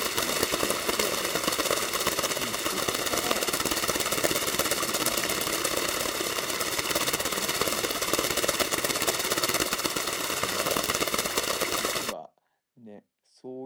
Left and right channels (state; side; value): identical; both; correlation 1.00